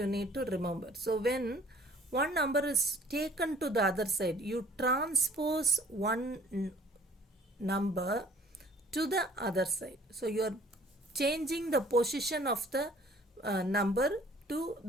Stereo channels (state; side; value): normal; both; correlation 0.54